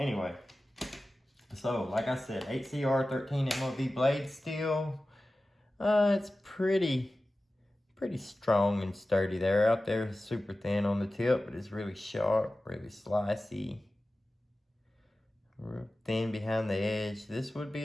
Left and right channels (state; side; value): normal; both; correlation 0.95